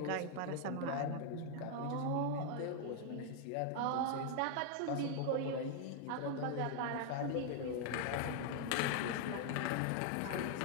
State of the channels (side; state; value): both; different; correlation 0.00